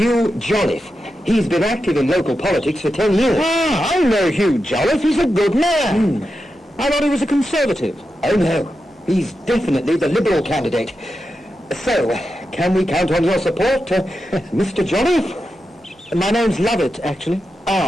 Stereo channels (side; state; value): both; normal; correlation 0.89